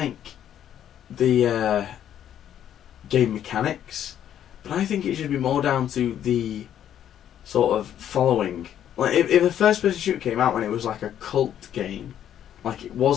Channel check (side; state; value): right; quieter; 10.3 dB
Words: the game mechanics, but I think it should be more down to the sort of following. Like if a first-person shooter came out when it was like a cult game, like it